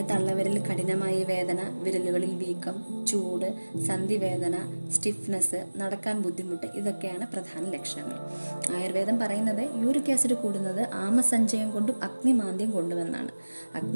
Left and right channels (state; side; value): inverted; both; correlation -1.00